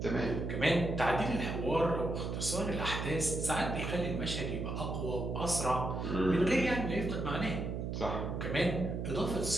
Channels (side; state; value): right; noise; hum, 3 dB below the sound